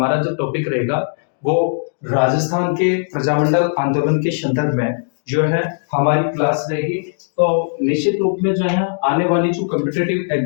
जो टॉपिक रहेगा वो राजस्थान के प्रजामंडल आंदोलन के संदर्भ में जो है हमारी क्लास रहेगी। तो निश्चित रूप में जो है आने वाली जो कॉम्पिटिटिव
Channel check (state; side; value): silent; right; digital silence